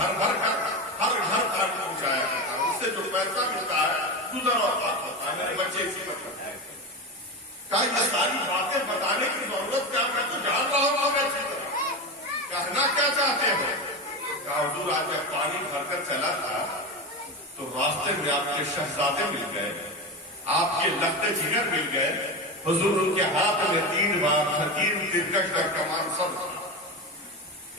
بھر کر ہر گھر تک پہنچایا کرتا ہوں. اس سے جو پیسہ ملتا ہے گزر اور بات ہوتا ہے. میرے بچے اسی پر کرتے ہیں. کہا یہ ساری باتیں بتانے کی ضرورت کیا، میں تو جان رہا ہوں. میں اچھی طرح کہنا کیا چاہتے ہو؟ کہا حضور آج جب پانی بھر کر چلا تھا تو راستے میں آپ کے شہزادے مل گئے، آپ کے لخت جگر مل گئے. حضور ان کے ہاتھ میں 3 بار حکیم ترکش اور کمان سب تھا.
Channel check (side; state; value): both; normal; correlation 0.20